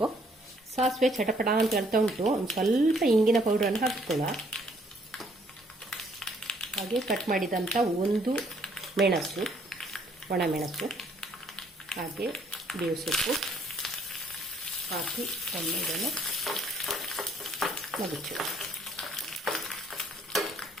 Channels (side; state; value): both; normal; correlation 0.65